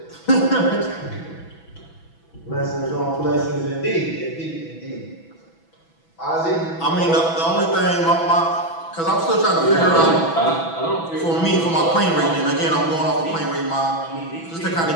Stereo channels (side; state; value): right; late; 6.1 ms